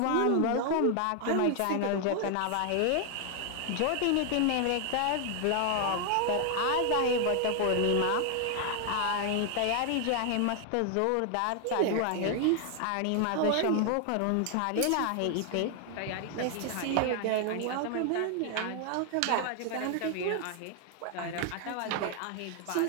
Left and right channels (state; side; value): different; both; correlation 0.00